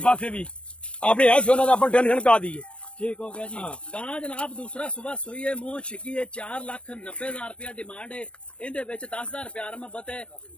ਪਾਸੇ ਵੀ। ਆਪਣੀ ਹੈ ਸੋਨਾ ਦਾ ਆਪਾਂ ਟੈਨਸ਼ਨ ਕਾ ਦਈਏ। ਠੀਕ ਹੋ ਗਿਆ ਜੀ। ਗਾਂ ਜਨਾਬ ਦੂਸਰਾ ਸੁਬਹ ਸੂਈ ਹੈ, ਮੂੰਹ ਛਿੱਕੀ ਹੈ, 4,90,000 ਰੁਪਇਆ ਡਿਮਾਂਡ ਹੈ। ਇਹਦੇ ਵਿੱਚ 10,000 ਪਿਆਰ ਮੁਹੱਬਤ ਹੈ।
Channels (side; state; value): right; late; 0.059 ms